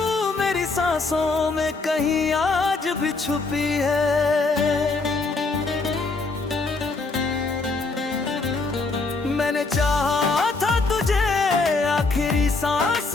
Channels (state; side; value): quieter; right; 3.8 dB